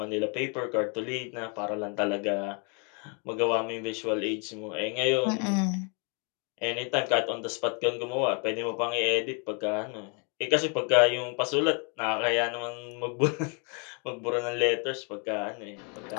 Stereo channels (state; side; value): quieter; right; 36.3 dB